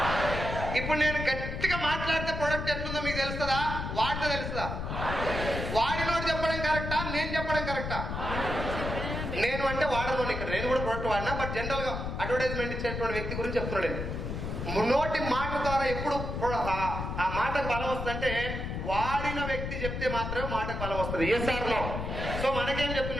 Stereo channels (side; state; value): left; noise; rumble, 4 dB below the sound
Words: ఇప్పుడు నేను గట్టిగా మాట్లాడితే ప్రొడక్ట్ ఎట్లుందో మీకు తెలుస్తుందా? వాడితే తెలుస్తుందా? వాడినోడు చెప్పడం కరెక్టా, నేను చెప్పడం కరెక్టా? నేను అంటే వాడను. ఇక్కడ నేను కూడా ప్రొడక్ట్ వాడినా, బట్ జనరల్ గా అడ్వర్టైజ్మెంట్ ఇచ్చేటువంటి వ్యక్తి గురించి చెప్తున్నాడు. నోటి మాట ద్వారా ఎప్పుడు ఆ మాటకు బలం వస్తుందంటే వాడిన వ్యక్తి చెప్తే మాత్రమే మాటకు బలం వస్తుంది. Yes sir no? సో మనకేం